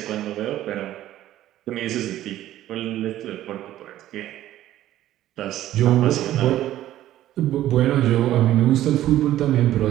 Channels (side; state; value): left; quieter; 13.5 dB